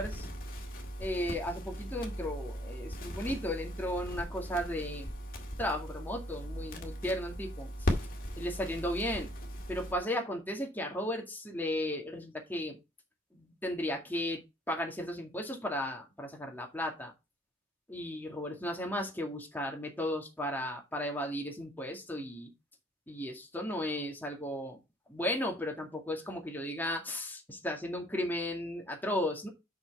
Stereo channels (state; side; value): normal; both; correlation 0.61